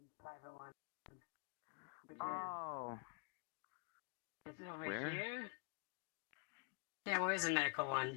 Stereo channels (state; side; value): quieter; right; 35.9 dB